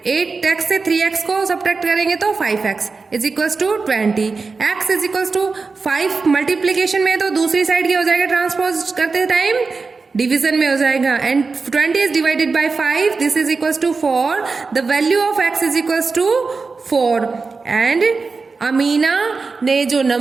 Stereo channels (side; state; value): left; quieter; 4.4 dB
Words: 8x से 3x को सब्ट्रैक्ट करेंगे तो 5x is equals to 20. x is equals to 5 multiplication में, तो दूसरी साइड क्या हो जाएगा ट्रांसपोज करते टाइम डिवीजन में हो जाएगा, and 20 is divided by 5, this is equals to 4. The value of x is equals to 4, and Amina ने जो